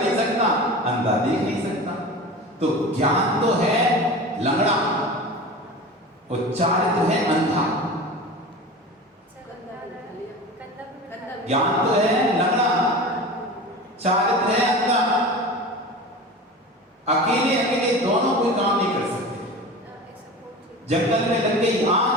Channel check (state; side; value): normal; both; correlation 0.33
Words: सकता अंधा देख नहीं सकता। तो ज्ञान तो है लंगड़ा और चारित्र है अंधा, ज्ञान तो है लंगड़ा चारित्र है अंधा, अकेले अकेले दोनों कोई काम नहीं कर सकते। जंगल में लग गई आग,